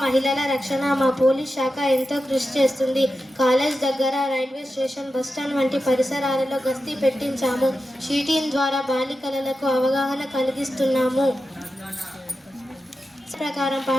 మహిళల రక్షణ మా పోలీస్ శాఖ ఎంతో కృషి చేస్తుంది. కాలేజ్ దగ్గర, రైల్వే స్టేషన్, బస్టాండ్ వంటి పరిసరాలలో గస్తీ పెట్టించాము. షీటీన్ ద్వారా బాలికలకు అవగాహన కలిగిస్తున్నాము. ప్రకారం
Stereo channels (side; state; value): both; normal; correlation 0.91